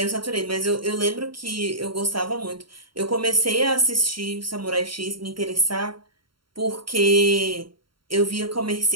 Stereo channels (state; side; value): late; left; 0.73 ms